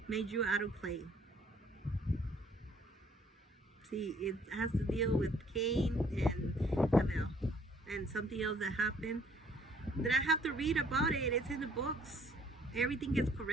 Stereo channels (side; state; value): both; normal; correlation 0.61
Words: Made you out of clay. See, it has to deal with Cain and Abel and something else that happened that I have to read about it. It's in the books. Everything gets